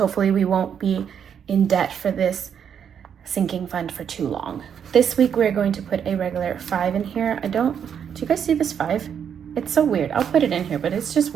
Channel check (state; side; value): quieter; left; 8.0 dB